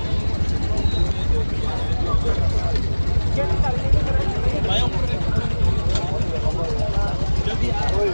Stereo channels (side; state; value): both; inverted; correlation -1.00